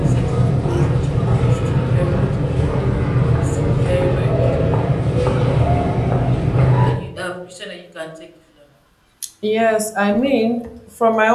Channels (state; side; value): identical; both; correlation 1.00